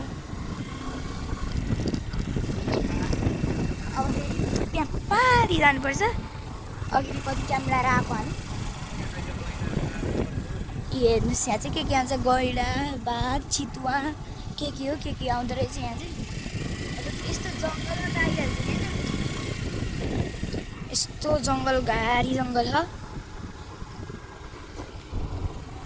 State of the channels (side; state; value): both; identical; correlation 1.00